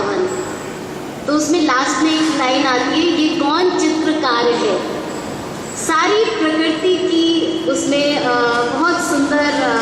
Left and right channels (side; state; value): both; identical; correlation 1.00